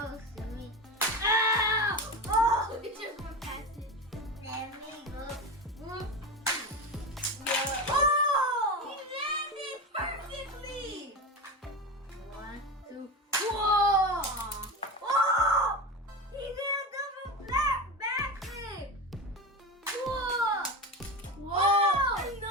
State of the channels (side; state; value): both; normal; correlation 0.23